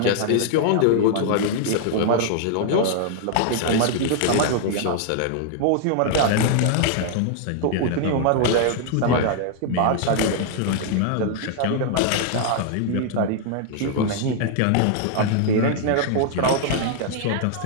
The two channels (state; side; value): different; both; correlation 0.00